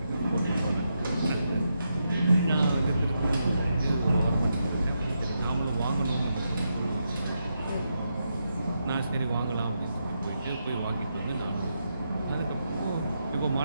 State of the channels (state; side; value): inverted; both; correlation -0.84